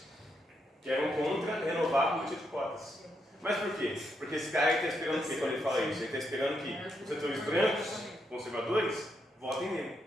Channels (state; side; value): normal; both; correlation 0.80